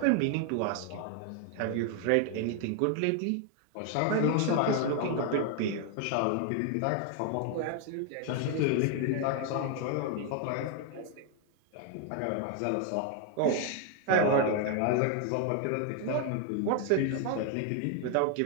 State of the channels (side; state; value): both; different; correlation 0.00